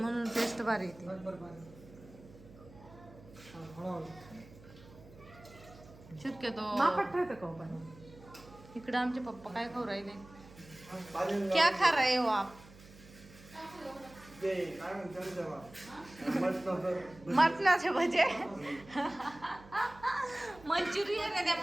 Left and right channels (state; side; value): noise; right; hum, 21 dB below the sound